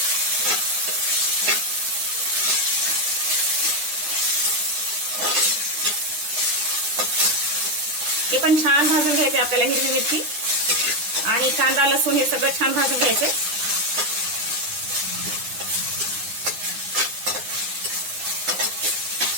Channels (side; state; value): left; late; 9.8 ms